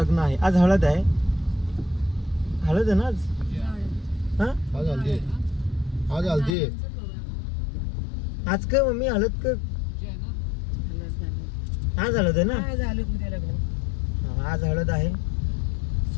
आहे. आज हळद आहे ना आज. आज हल्दी आज काय मम्मी हळद का? आज हळद आहे ना? आज हळद आहे.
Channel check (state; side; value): drops out; right; at 6.6 s